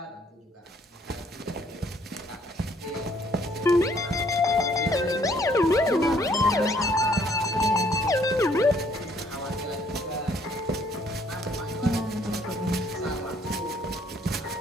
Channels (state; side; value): normal; both; correlation 0.64